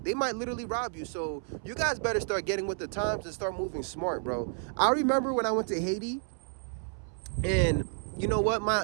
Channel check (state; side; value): silent; left; 57 dB below the other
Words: might literally rob you. So you guys better start getting with the times and start moving smart, bro. I remember when I went to Haiti, and you know what?